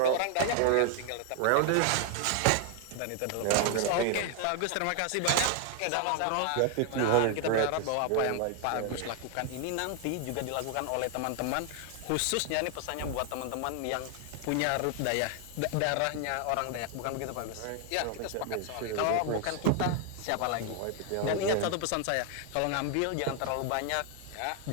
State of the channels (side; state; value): both; different; correlation 0.01